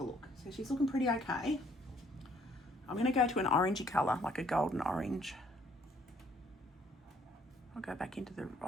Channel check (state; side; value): normal; both; correlation 0.63